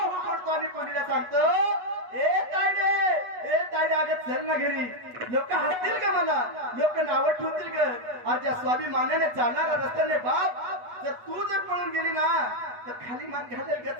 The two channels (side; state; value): left; late; 8.2 ms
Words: पडतो आणि मुलीला सांगतो, ए तायडे अगं चल ना घरी. लोक हसतील का मला, लोक नावं ठेवतील का? आज ज्या स्वाभिमानाने चालणारा रस्त्याने बाप जर तू जर पळून गेली ना तर खाली मान घालेल का